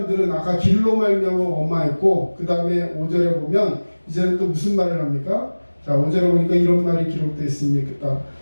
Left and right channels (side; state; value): both; inverted; correlation -1.00